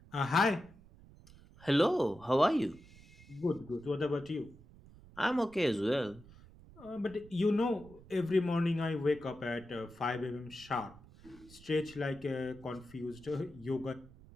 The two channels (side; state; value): right; noise; rumble, 22 dB below the sound